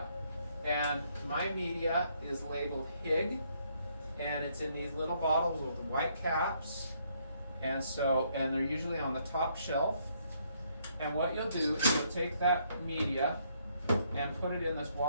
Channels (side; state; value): both; inverted; correlation -0.70